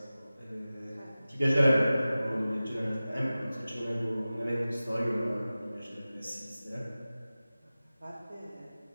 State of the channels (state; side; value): inverted; both; correlation -0.97